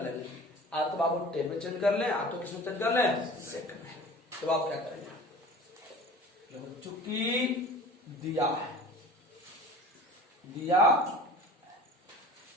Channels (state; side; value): normal; both; correlation 0.41